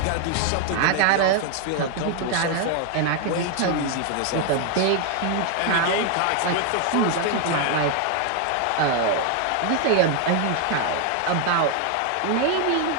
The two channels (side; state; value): both; different; correlation 0.00